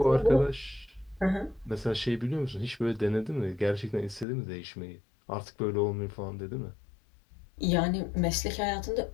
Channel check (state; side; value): drops out; right; at 4.2 s